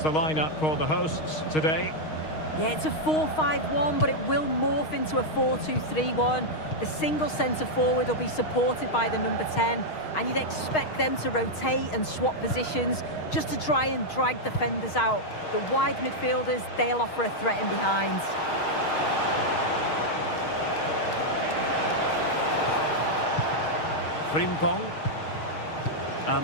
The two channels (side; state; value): right; late; 6.4 ms